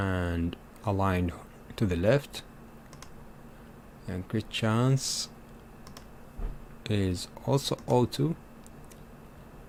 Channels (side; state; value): both; identical; correlation 1.00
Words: aligned to the left, and crit chance is also O2.